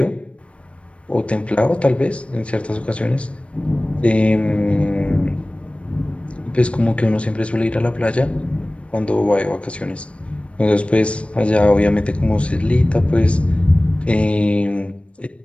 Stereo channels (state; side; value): late; right; 0.061 ms